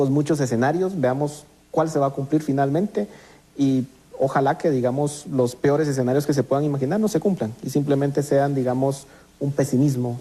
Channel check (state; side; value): identical; both; correlation 1.00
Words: muchos escenarios. Veamos cuál se va a cumplir finalmente y ojalá que, digamos, los peores escenarios que se puedan imaginar no se cumplan y simplemente sean, digamos, un pesimismo